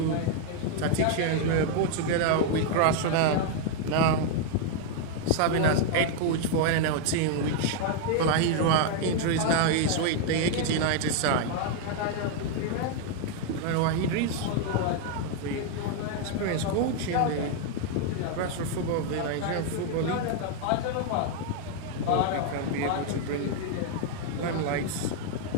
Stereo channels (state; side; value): different; both; correlation 0.00